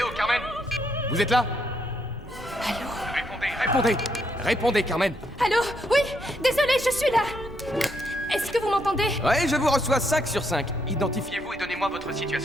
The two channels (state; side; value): normal; both; correlation 0.76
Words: oh, Carmen? Vous êtes là? Allô? Répondez! Répondez, Carmen! Allô? Oui, désolé, je suis là. Est-ce que vous m'entendez? Ouais, je vous reçois 5 sur 5. Identifiez-vous et donnez-moi votre